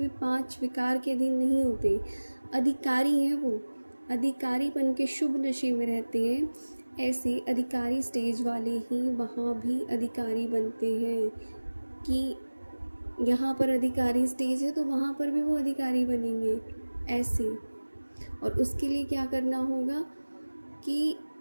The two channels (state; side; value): inverted; both; correlation -1.00